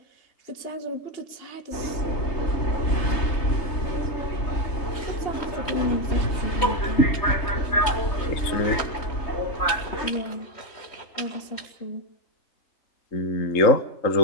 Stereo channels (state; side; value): late; right; 3.1 ms